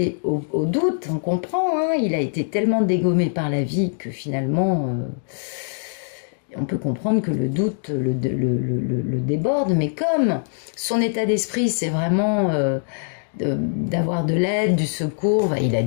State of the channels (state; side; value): silent; right; digital silence